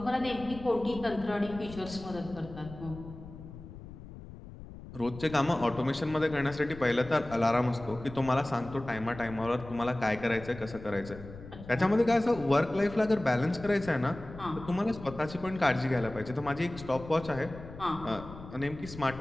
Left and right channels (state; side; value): noise; left; rumble, 14 dB below the sound